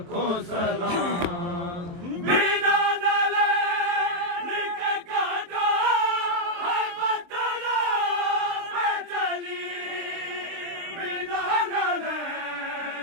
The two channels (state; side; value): late; left; 23 ms